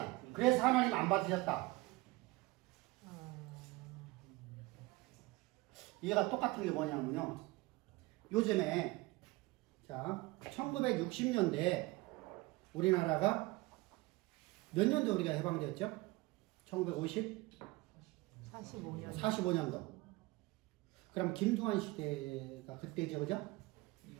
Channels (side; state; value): left; quieter; 21.9 dB